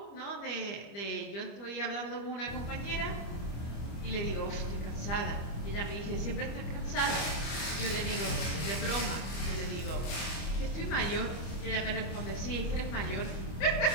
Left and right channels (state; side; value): late; right; 25 ms